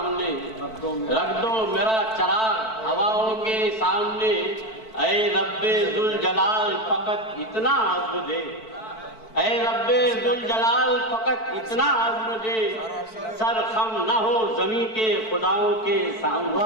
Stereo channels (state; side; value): late; right; 4.5 ms